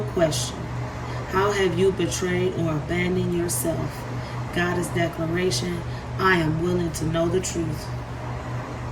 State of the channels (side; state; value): both; identical; correlation 1.00